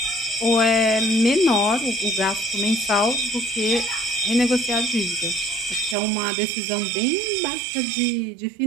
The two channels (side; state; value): left; drops out; at 6.0 s